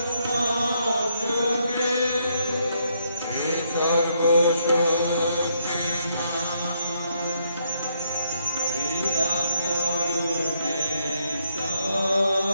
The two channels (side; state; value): both; inverted; correlation -0.74